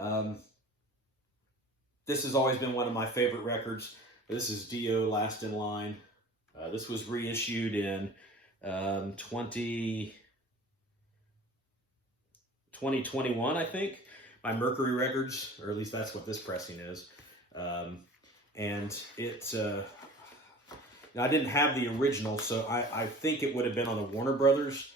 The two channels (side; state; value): both; normal; correlation 0.42